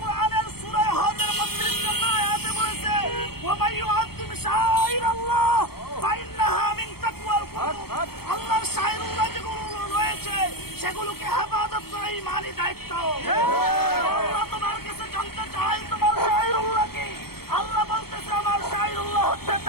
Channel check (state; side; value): late; right; 0.95 ms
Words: সূরা হজের 32 নম্বর আয়াতে বলেছে, ওয়া মান ইউআযযিম শাআইরাল্লাহ ফাইন্নাহা মিন তাকওয়াল কুলুব। আল্লাহর শাআইরুল্লাহ যেগুলো রয়েছে সেগুলোকে হেফাজত করা ঈমানি দায়িত্ব। আল্লাহ তোমার কাছে জানতে চাই তোমার শাআইরুল্লাহ কি? আল্লাহ বলতেছে আমার শাআইরুল্লাহ হচ্ছে